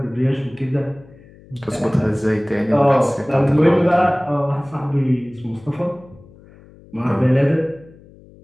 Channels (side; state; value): left; noise; hum, 24 dB below the sound